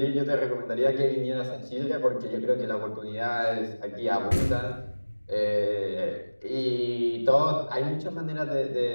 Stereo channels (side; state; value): both; inverted; correlation -1.00